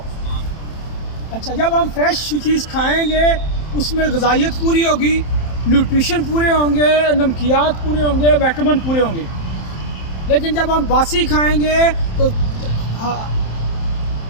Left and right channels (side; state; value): right; late; 27 ms